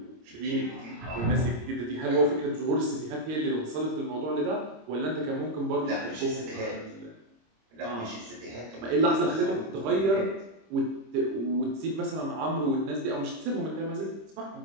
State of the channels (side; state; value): left; late; 26 ms